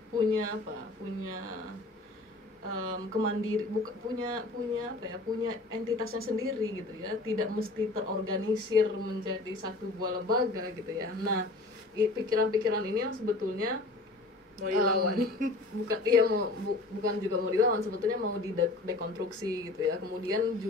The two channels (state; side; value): quieter; right; 3.1 dB